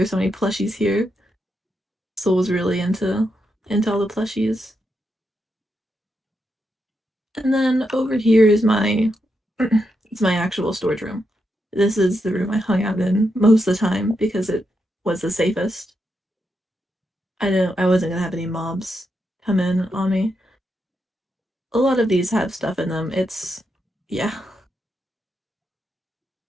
so many plushies here. Soul was really into all the plushies. And then over here is my it's my actual storage room. This is the room I hung out in most of the time because it was the safest. I wasn't gonna have any mobs come in on me. A lot of these have stuff in them. Yeah.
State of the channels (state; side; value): normal; both; correlation 0.84